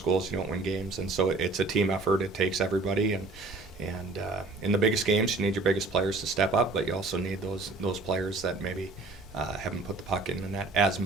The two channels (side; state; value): left; quieter; 3.4 dB